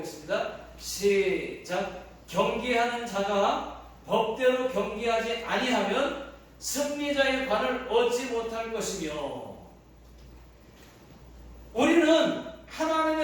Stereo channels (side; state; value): both; identical; correlation 1.00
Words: 시작. 경기하는 자가 법대로 경기하지 아니하면 승리자의 관을 얻지 못할 것이며, 우리는